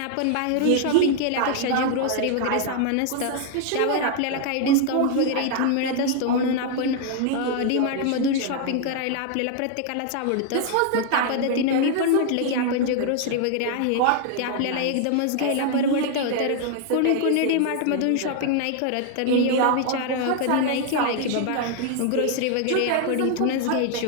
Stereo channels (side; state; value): both; different; correlation 0.00